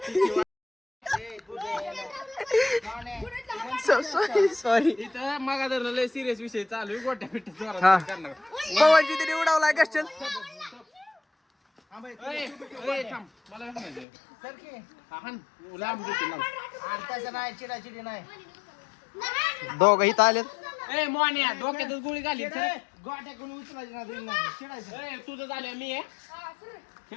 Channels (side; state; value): right; drops out; at 14.1 s